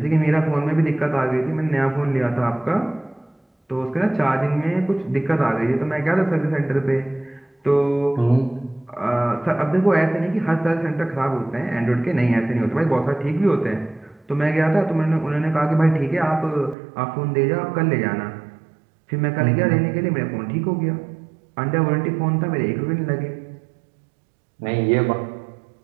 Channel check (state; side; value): drops out; left; at 16.8 s